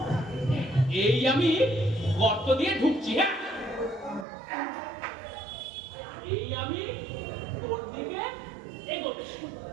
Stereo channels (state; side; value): drops out; left; at 4.2 s